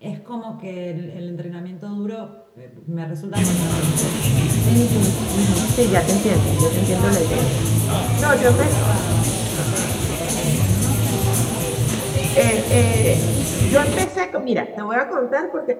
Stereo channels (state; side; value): identical; both; correlation 1.00